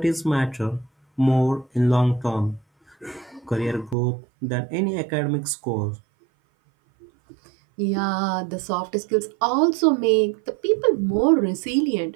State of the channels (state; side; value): drops out; left; at 4.0 s